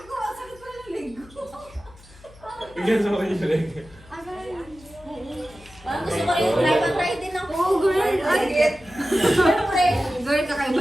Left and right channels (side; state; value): left; noise; hum, 23 dB below the sound